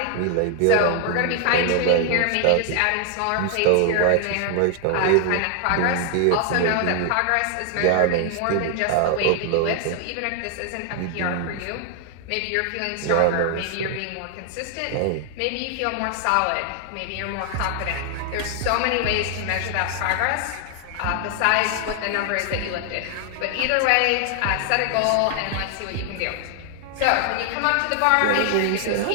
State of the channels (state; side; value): different; both; correlation 0.00